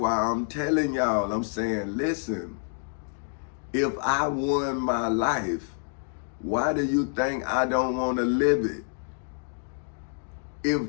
I'm telling y'all, I'm saying, listen, if I won my life, why do you think I don't want to live it?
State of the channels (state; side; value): silent; right; digital silence